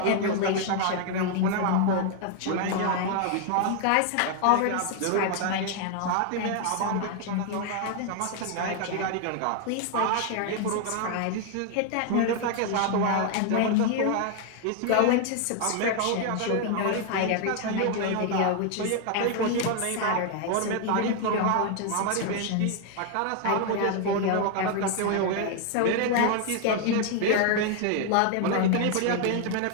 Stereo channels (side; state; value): both; different; correlation 0.00